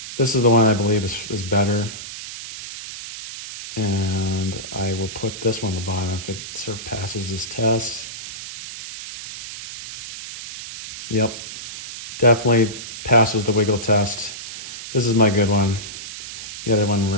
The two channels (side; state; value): right; noise; hiss, 10 dB below the sound